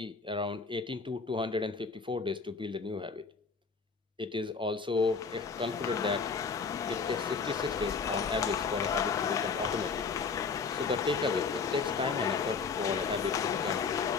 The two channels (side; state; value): right; quieter; 5.1 dB